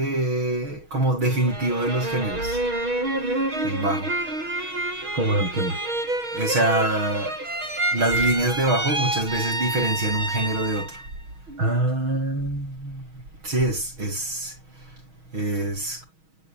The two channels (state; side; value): late; left; 6.3 ms